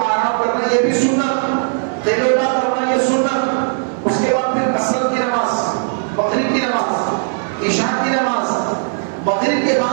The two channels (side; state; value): left; silent; 68 dB below the other